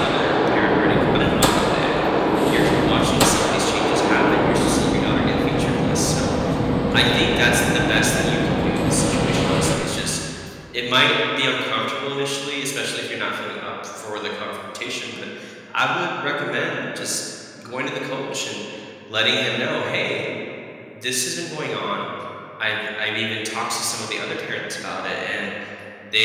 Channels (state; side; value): identical; both; correlation 1.00